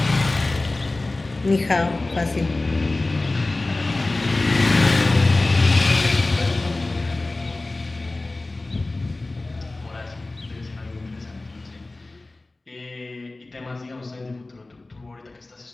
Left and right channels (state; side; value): quieter; right; 3.0 dB